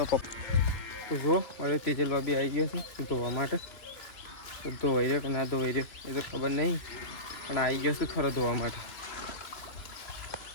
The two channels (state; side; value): late; right; 2.9 ms